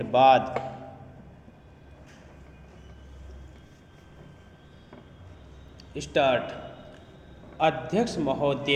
बाद। स्टार्ट। अध्यक्ष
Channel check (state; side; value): identical; both; correlation 1.00